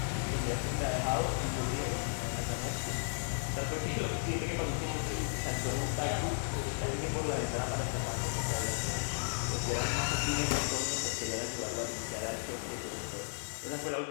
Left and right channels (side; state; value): right; silent; 55 dB below the other